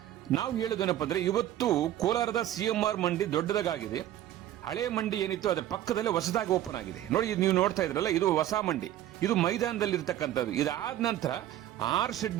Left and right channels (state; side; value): quieter; left; 12.6 dB